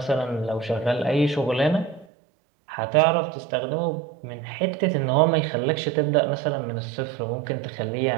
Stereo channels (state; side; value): drops out; left; at 2.1 s